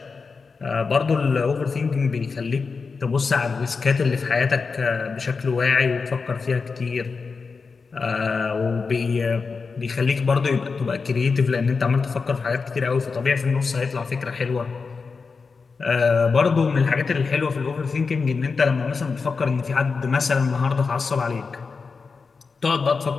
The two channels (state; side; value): quieter; right; 4.8 dB